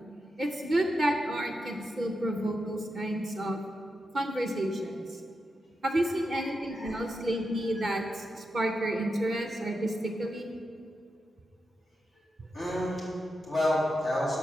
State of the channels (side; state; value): both; normal; correlation 0.87